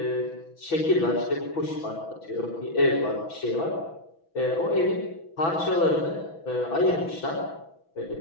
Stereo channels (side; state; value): right; late; 6.1 ms